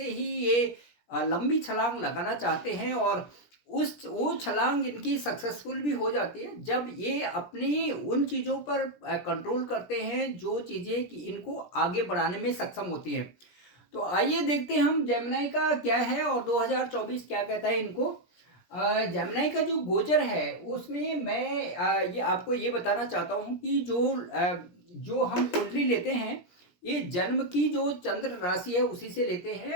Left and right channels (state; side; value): late; right; 17 ms